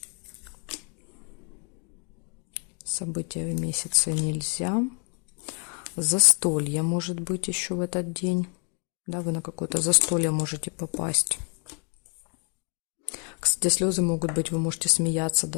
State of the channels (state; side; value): quieter; right; 37.7 dB